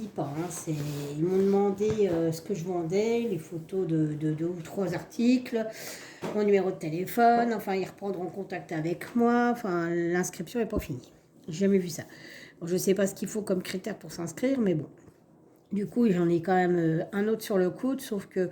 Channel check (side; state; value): both; identical; correlation 1.00